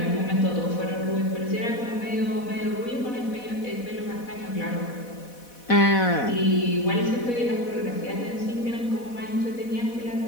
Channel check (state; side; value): late; right; 4.1 ms